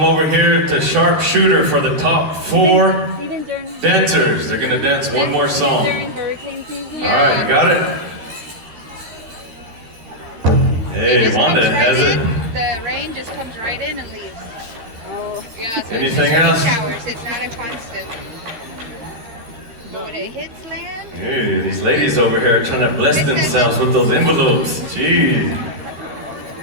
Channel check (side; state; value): left; late; 13 ms